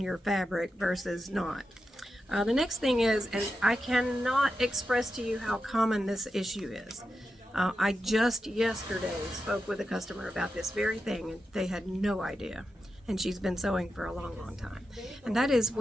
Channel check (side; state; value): both; normal; correlation 0.89